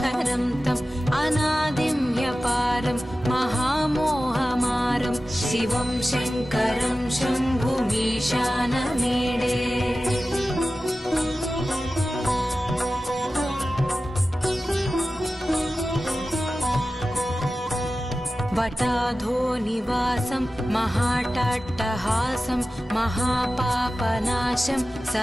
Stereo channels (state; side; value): normal; both; correlation 0.95